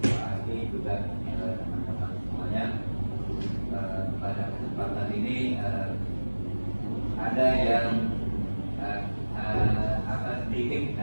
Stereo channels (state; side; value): inverted; both; correlation -1.00